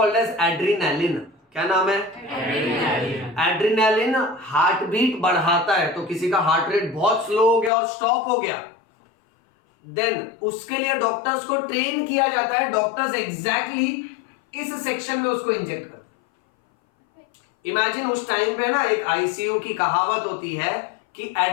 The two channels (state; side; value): drops out; right; at 7.7 s